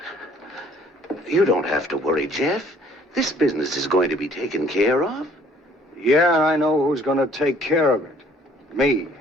You don't have to worry, Jeff. This business is going to be taken care of. Yeah, I know who's gonna take care of it. Me.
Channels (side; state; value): both; normal; correlation 0.59